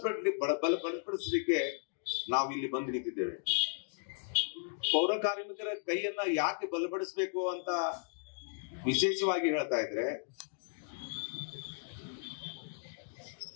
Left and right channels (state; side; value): silent; right; digital silence